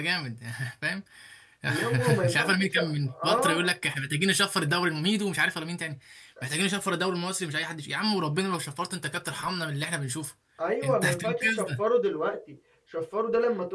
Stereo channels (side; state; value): both; identical; correlation 1.00